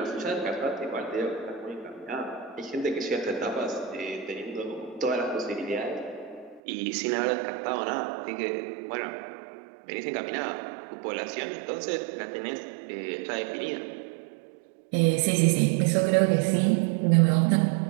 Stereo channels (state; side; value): drops out; left; at 6.6 s